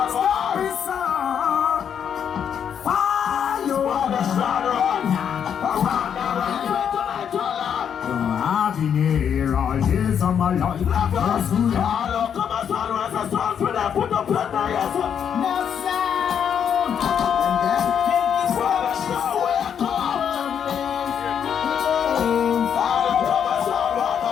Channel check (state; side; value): quieter; right; 8.2 dB